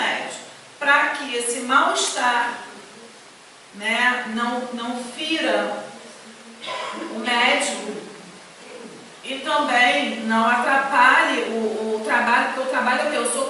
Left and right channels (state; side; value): identical; both; correlation 1.00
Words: para que esse mal-estar, né, não fira o médium e também não atrapalhe o trabalho, porque o trabalho é o